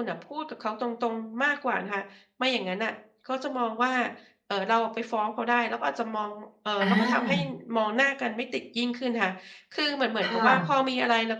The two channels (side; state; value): both; identical; correlation 1.00